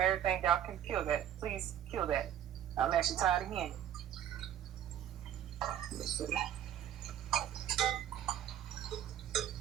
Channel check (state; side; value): quieter; left; 10.6 dB